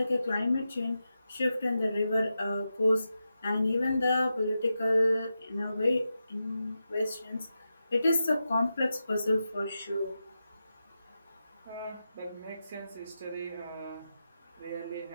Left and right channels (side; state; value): both; inverted; correlation -0.90